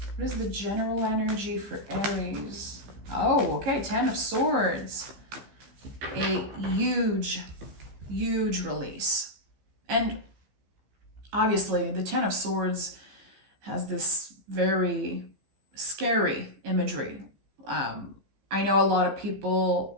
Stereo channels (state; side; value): late; left; 15 ms